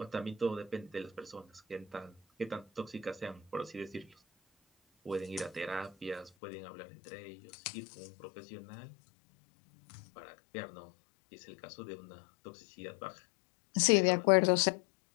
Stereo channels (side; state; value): right; drops out; at 6.3 s